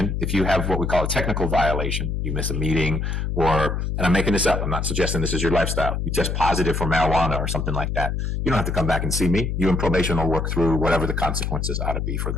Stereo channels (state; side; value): noise; left; hum, 1 dB below the sound